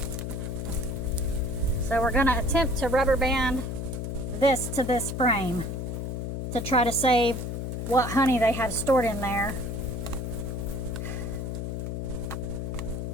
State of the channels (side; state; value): left; noise; hum, 4 dB below the sound